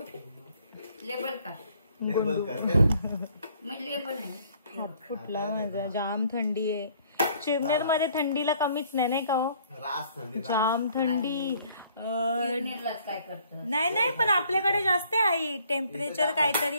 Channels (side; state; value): both; inverted; correlation -0.61